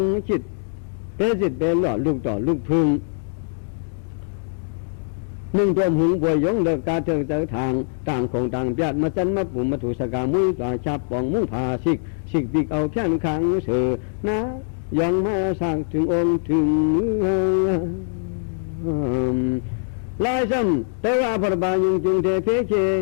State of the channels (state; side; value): silent; right; digital silence